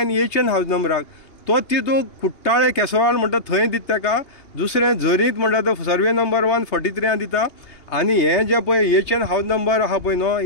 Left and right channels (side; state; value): right; late; 2.8 ms